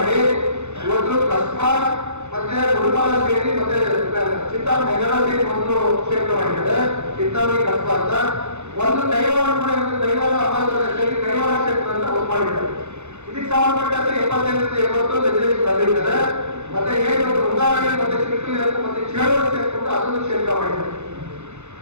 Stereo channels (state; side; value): late; left; 0.82 ms